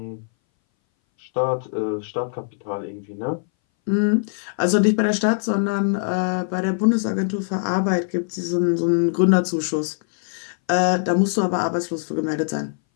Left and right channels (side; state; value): right; silent; 61 dB below the other